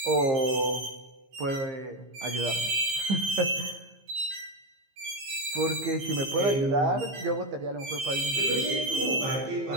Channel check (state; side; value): late; left; 15 ms